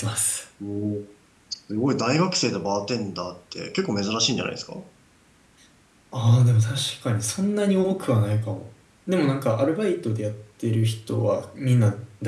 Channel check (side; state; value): both; identical; correlation 1.00